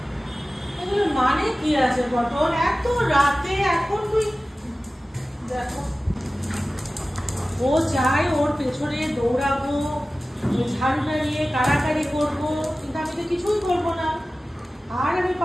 এগুলো মানে কি আছে কটন? এত রাতে এখন তুই দেখো, ও চাই ওর পেছনে দৌড়াবো, ঝাড়ুটা নিয়ে কাড়াকাড়ি করবো, কিন্তু আমি তো কিছুই করবো না। আর আমি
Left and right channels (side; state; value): both; normal; correlation 0.96